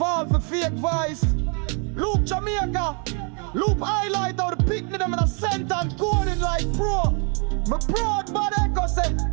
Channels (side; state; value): left; quieter; 37.6 dB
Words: for fake voice. Loop Jamaica, loop highlight how the picnic them in a center and coding like pro. My proud but Echo say,